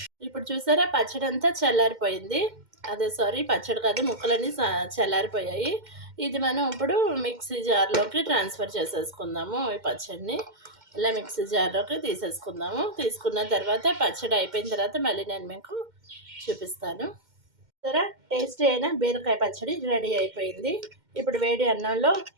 ఇప్పుడు చూసారా, పచ్చడి అంతా చల్లారిపోయింది. పచ్చడి కాదు, ముక్కలన్నీ చల్లారిపోయాయి. ఇది మనం ఇప్పుడు మిక్సీ జార్లోకి ట్రాన్స్ఫర్ చేసేసుకుందాము. ఈ పచ్చడిని ఇలా మిక్సీ జార్లోకి తీసేసుకుందాము. తీసుకున్న తర్వాత పచ్చడి అయిపోయిన తర్వాత మళ్ళీ నేను మీకు చూపిస్తాను. సరే, టేస్టీ అయిన బీరకాయ పచ్చడి రెడీ అయిపోయింది. ఇప్పుడు వేడి అన్నంలో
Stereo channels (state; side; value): late; left; 2.1 ms